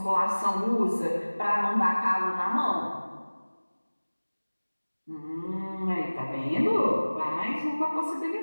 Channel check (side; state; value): both; inverted; correlation -1.00